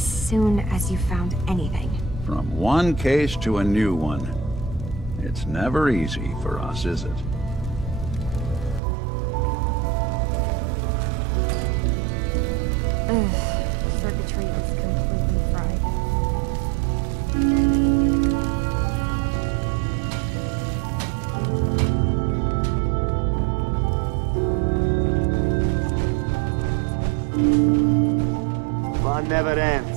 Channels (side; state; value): left; drops out; at 8.8 s